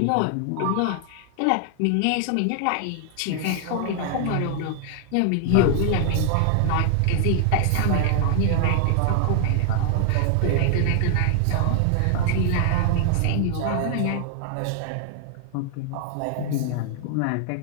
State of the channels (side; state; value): both; different; correlation 0.00